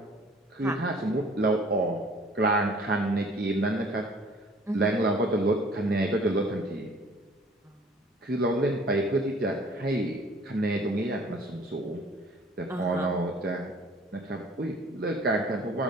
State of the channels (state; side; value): normal; both; correlation 0.53